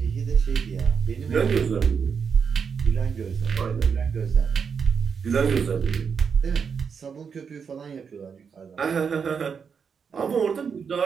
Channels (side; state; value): left; quieter; 6.3 dB